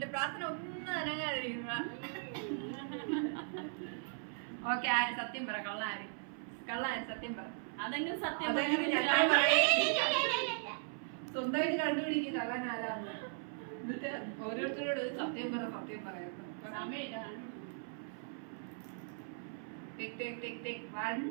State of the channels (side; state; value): left; silent; 52 dB below the other